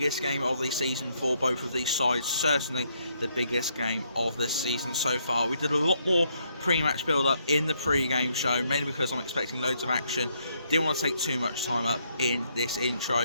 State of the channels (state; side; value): inverted; both; correlation -0.73